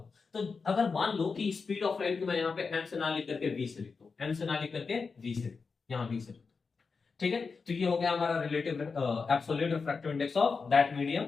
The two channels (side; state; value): right; quieter; 4.9 dB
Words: तो अगर मान लो कि स्पीड ऑफ लाइट को मैं यहाँ पे m से ना लिख करके v से लिखता हूं, m से ना लिख करके v से, यहाँ v से, ठीक है। तो ये हो गया हमारा relative absolute refractive index of that medium,